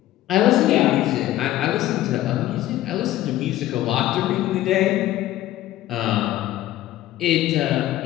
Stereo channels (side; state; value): right; quieter; 14.5 dB